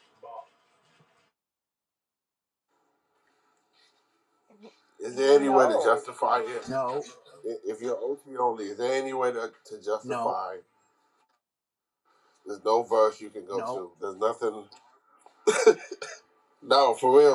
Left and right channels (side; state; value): both; identical; correlation 1.00